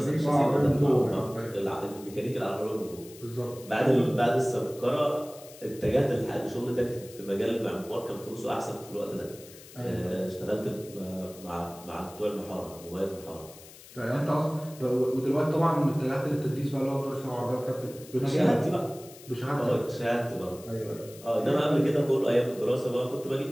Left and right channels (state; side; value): noise; left; hiss, 19 dB below the sound